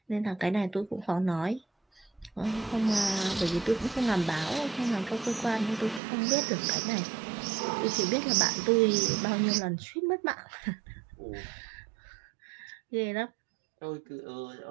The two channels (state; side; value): drops out; left; at 6.0 s